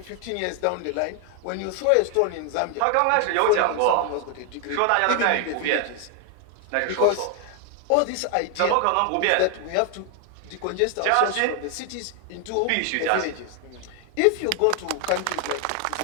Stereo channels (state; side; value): different; both; correlation 0.00